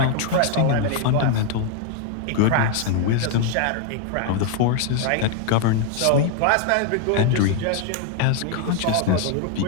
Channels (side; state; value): both; different; correlation 0.00